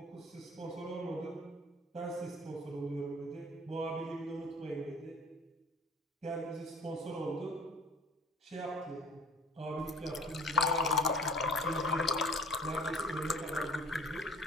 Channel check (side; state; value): both; normal; correlation 0.47